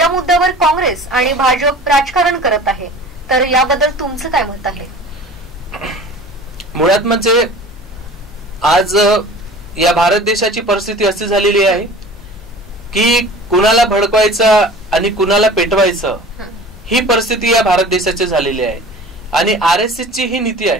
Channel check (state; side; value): normal; both; correlation 0.41